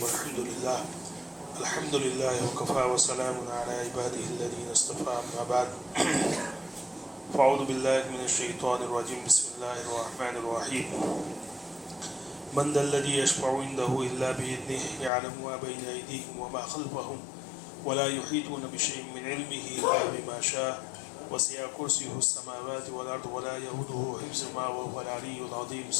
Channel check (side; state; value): right; drops out; at 15.1 s